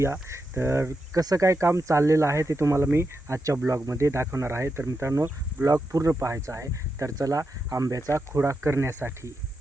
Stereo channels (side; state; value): both; normal; correlation 0.86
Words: तर कसं काय काम चाललेलं आहे ते तुम्हाला मी आजच्या ब्लॉगमध्ये दाखवणार आहे. तर मित्रांनो, ब्लॉग पूर्ण पाहायचा आहे. तर चला आंब्याचा खुडा करण्यासाठी.